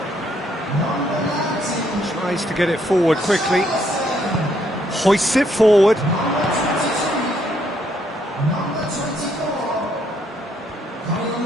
Tries to get it forward quickly. Hoists it forward.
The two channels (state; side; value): normal; both; correlation 0.71